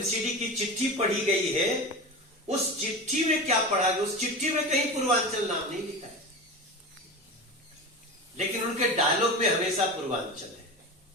की चिट्ठी पढ़ी गई है, उस चिट्ठी में क्या पढ़ा गया? उस चिट्ठी में कहीं पूर्वांचल नाम नहीं लिखा है, लेकिन उनके डायलॉग में हमेशा पूर्वांचल है।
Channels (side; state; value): both; normal; correlation 0.27